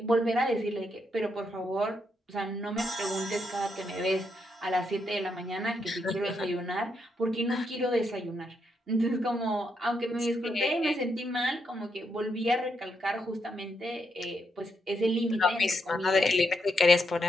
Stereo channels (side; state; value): both; normal; correlation 0.79